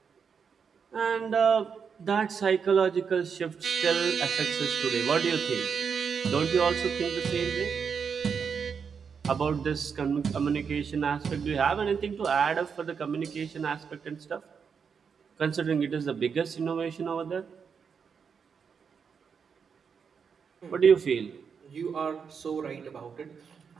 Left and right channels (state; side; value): quieter; left; 6.4 dB